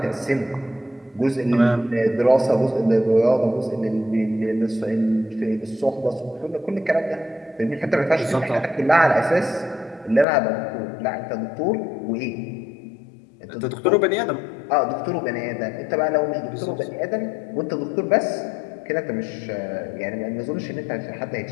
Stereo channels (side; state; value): right; drops out; at 10.2 s